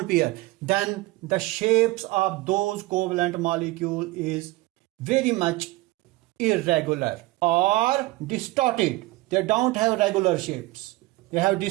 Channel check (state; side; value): quieter; left; 20.5 dB